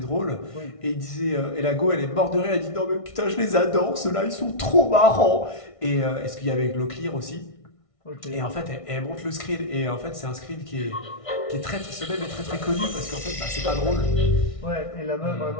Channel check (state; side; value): late; right; 1.6 ms